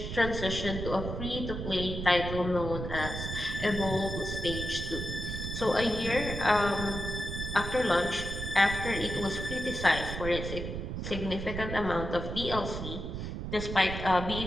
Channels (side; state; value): right; noise; rumble, 5 dB below the sound